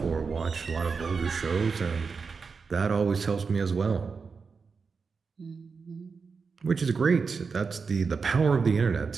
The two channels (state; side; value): quieter; left; 5.1 dB